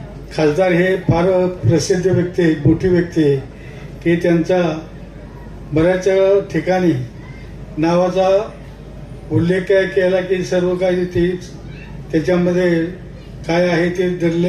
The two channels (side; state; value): both; identical; correlation 1.00